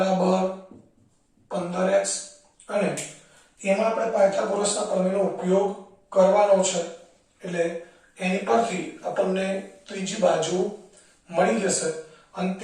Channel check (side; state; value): both; identical; correlation 1.00